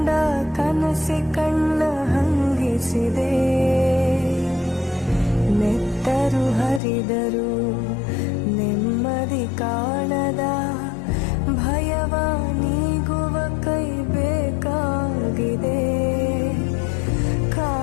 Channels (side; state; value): right; drops out; at 6.8 s